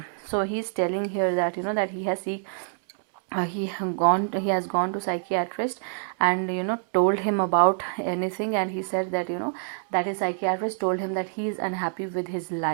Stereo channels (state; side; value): silent; left; digital silence